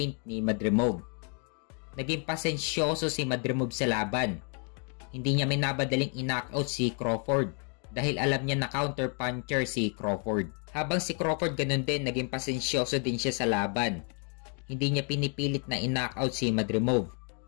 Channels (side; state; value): right; quieter; 40.0 dB